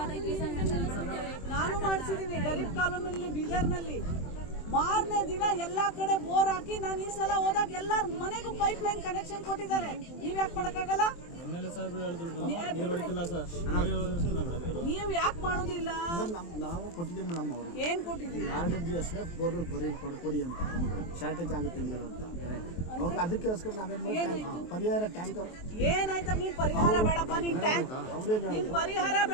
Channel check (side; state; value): right; late; 23 ms